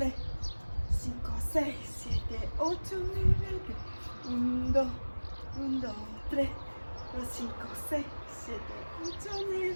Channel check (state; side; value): inverted; both; correlation -1.00